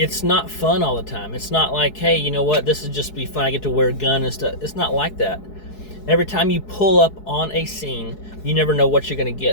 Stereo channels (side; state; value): right; late; 4.7 ms